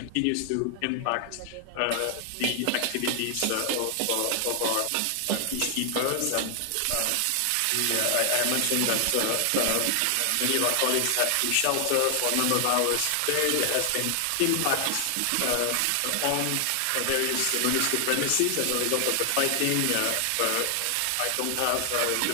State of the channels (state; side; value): different; both; correlation 0.00